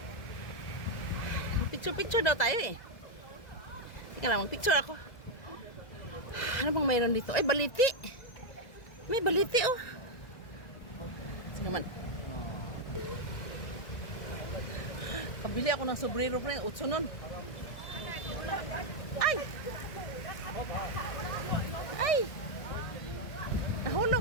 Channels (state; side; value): late; right; 1.7 ms